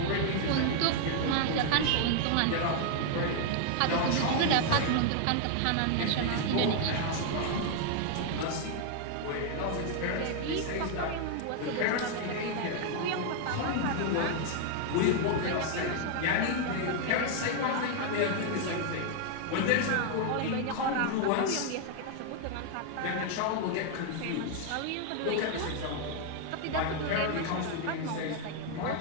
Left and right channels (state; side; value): different; both; correlation 0.00